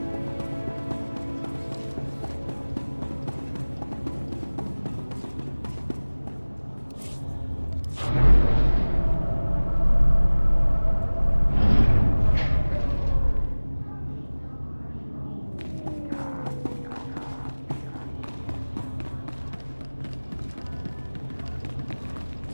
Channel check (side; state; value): both; inverted; correlation -1.00